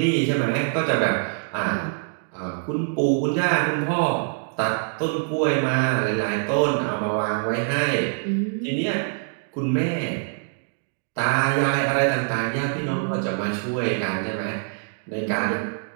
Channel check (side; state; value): left; silent; 57 dB below the other